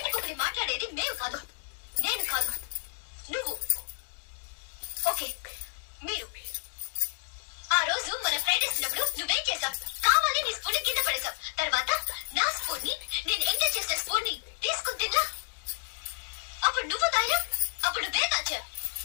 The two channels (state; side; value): silent; right; digital silence